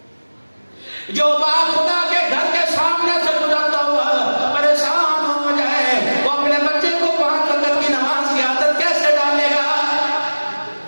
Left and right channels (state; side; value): inverted; both; correlation -1.00